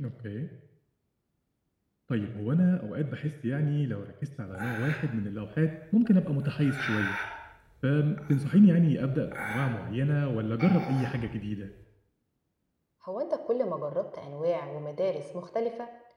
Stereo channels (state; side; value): identical; both; correlation 1.00